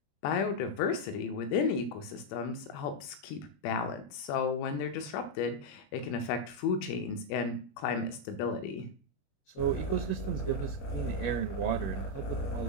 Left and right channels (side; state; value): right; late; 21 ms